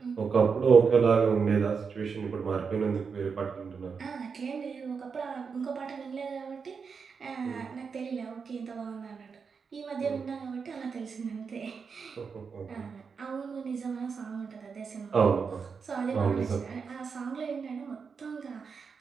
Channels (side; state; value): left; quieter; 5.7 dB